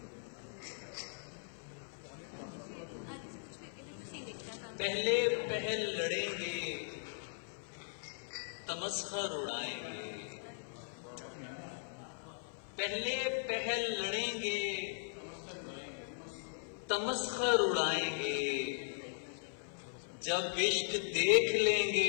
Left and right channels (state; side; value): silent; right; 52 dB below the other